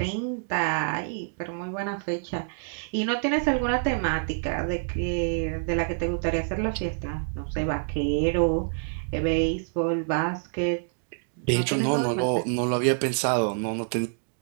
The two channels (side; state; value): left; silent; digital silence